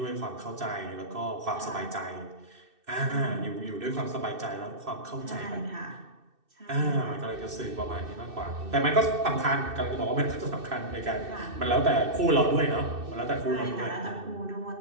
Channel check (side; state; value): left; late; 2.6 ms